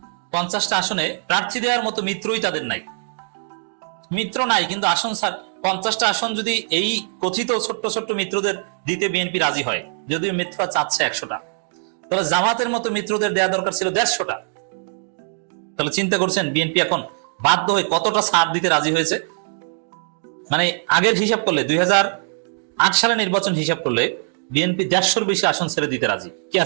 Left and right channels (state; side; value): silent; left; digital silence